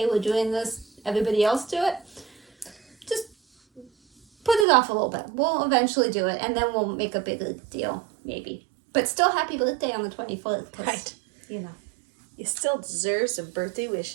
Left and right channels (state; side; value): drops out; left; at 4.7 s